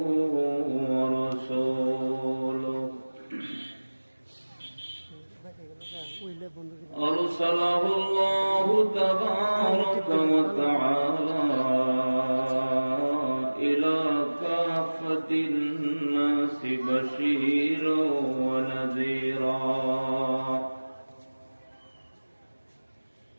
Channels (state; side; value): inverted; both; correlation -1.00